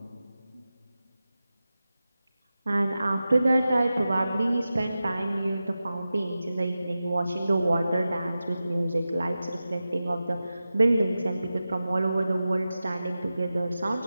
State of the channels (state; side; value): inverted; both; correlation -0.94